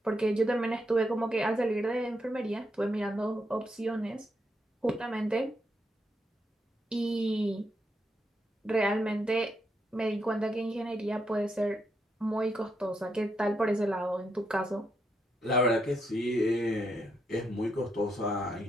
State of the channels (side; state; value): both; normal; correlation 0.80